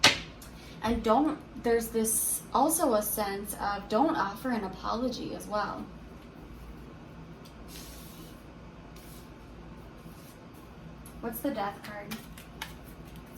And there's this also a sense of don't offer an apology as well. What's the Death card?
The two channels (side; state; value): both; identical; correlation 1.00